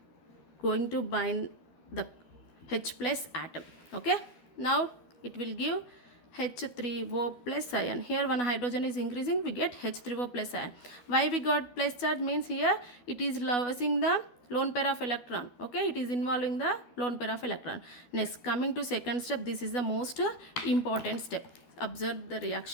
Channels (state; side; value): late; right; 12 ms